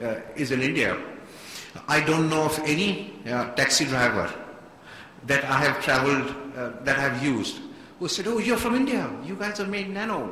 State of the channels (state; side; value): identical; both; correlation 1.00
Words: is in India. I don't know of any taxi driver that I have traveled, that I have used, who said, oh, you're from India, you guys have made